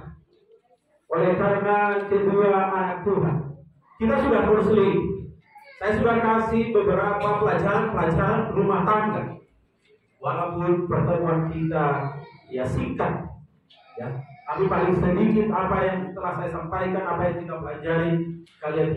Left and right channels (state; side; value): identical; both; correlation 1.00